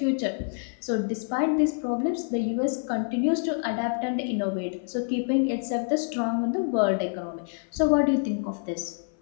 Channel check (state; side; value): silent; right; 56 dB below the other